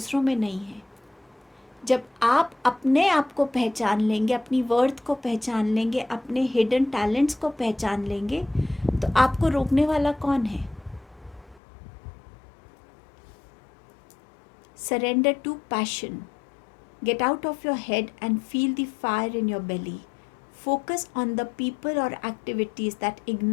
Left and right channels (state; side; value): drops out; right; at 11.6 s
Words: में नहीं है। जब आप अपने आप को पहचान लेंगे, अपनी वर्थ को पहचान लेंगे, अपने हिडन टैलेंट्स को पहचान लेंगे, तो आपको रोकने वाला कौन है? Surrender to passion. Get out of your head and feel the fire in your belly. Focus on the people or activities that